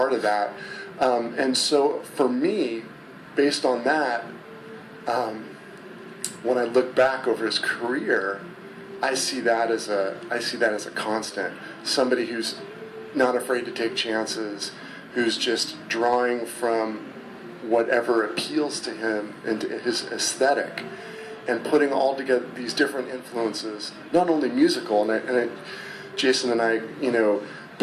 of that. And so for me, based on that, when I look back over his career, I see that as a constant. Somebody who's not afraid to take chances, who's just drawing from whatever appeals to him and to his aesthetic, and putting all together these different influences, not only musical, Jason and I,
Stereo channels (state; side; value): identical; both; correlation 1.00